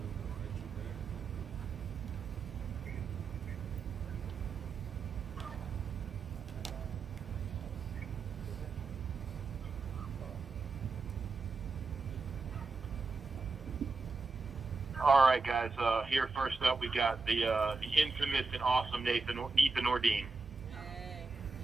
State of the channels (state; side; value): quieter; left; 4.0 dB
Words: All right, guys. Here first up, we got the infamous and awesome Ethan Ordine.